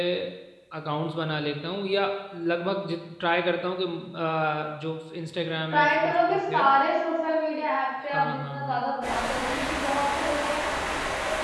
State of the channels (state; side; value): identical; both; correlation 1.00